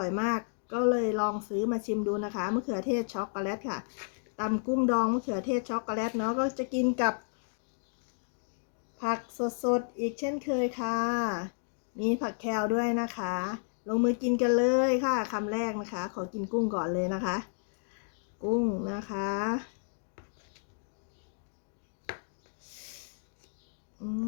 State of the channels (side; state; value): right; silent; digital silence